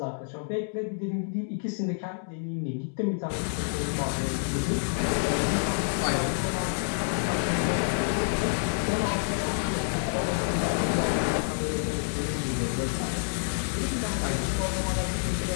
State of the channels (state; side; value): silent; right; digital silence